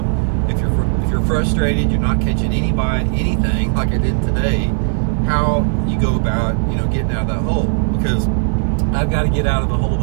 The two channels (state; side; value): silent; left; 68 dB below the other